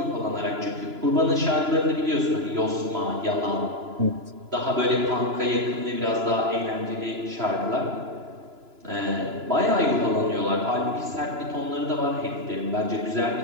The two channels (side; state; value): left; late; 2.9 ms